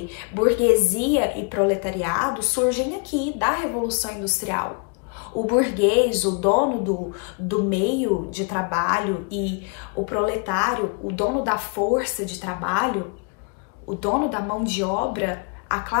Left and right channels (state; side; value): quieter; right; 34.3 dB